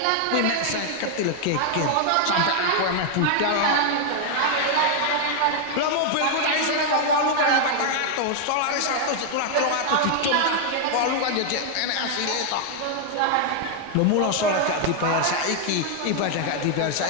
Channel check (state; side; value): different; both; correlation 0.00